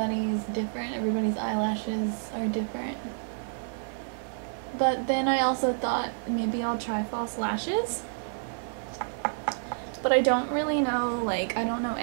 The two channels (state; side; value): silent; left; 59 dB below the other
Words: different, everybody's eyelashes are different. But then I also thought maybe I'll try false lashes. But I don't really know, like, I don't know